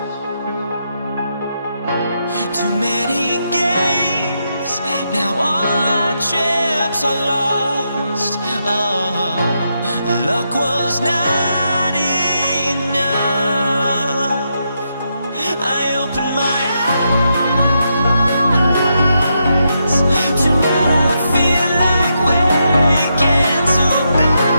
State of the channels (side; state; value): both; inverted; correlation -0.82